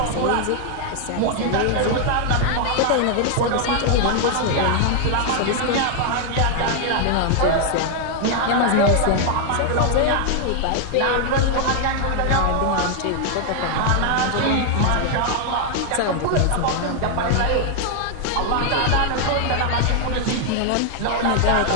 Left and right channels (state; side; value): different; both; correlation 0.00